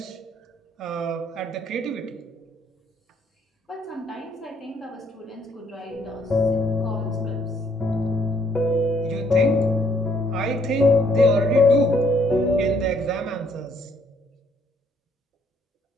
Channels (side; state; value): both; normal; correlation 0.67